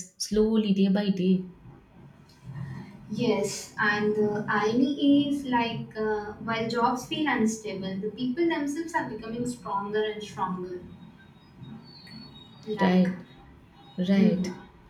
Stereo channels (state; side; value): identical; both; correlation 1.00